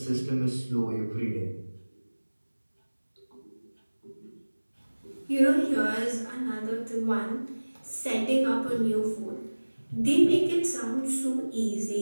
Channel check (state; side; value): inverted; both; correlation -1.00